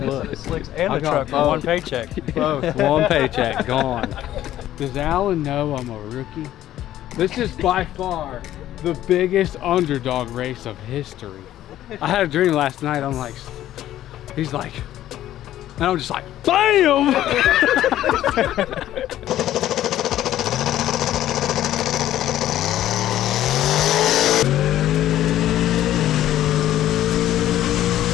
slicks and the truck for one paycheck. Both, one paycheck, gone. Does Alan know I'm a rookie? This is by far the biggest underdog race of history. I had a dream last night, I'm like, he's like, and I'm just like, BAM!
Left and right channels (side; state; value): right; quieter; 12.9 dB